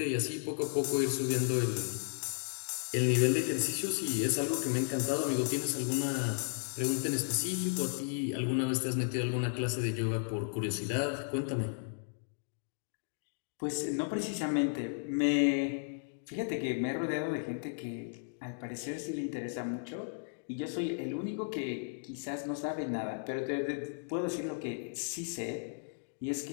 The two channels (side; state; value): right; silent; digital silence